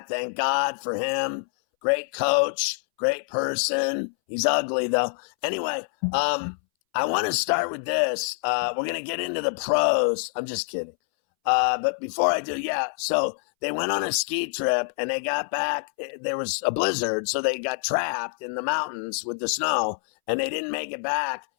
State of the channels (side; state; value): right; silent; 61 dB below the other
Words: Thank God for him. Great coach, great person. He's ugly though. Anyway, I want to start with this. We're going to get into the pros. I'm just kidding. But before I do, so they went on a ski trip and they got back. There was a blizzard, so they got trapped in the mountains with the snow, and they didn't make it back